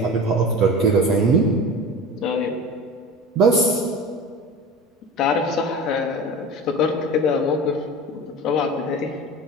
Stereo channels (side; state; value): both; normal; correlation 0.33